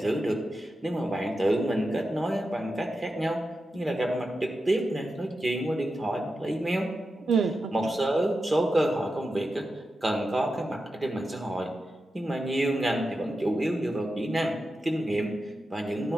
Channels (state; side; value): normal; both; correlation 0.90